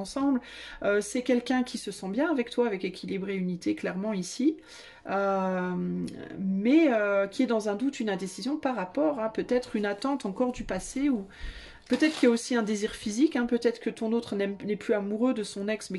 C'est quelqu'un qui se sent bien avec toi, avec équilibre et unité, clairement ici. Mais qui est dans un doute, une indécision par rapport à peut-être une attente encore du passé ou peut-être qu'il y a aussi un désir physique, hein, peut-être que ton autre n'est plus amoureux de son ex,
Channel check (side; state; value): both; identical; correlation 1.00